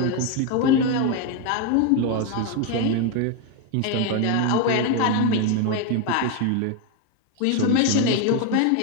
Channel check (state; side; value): different; both; correlation 0.02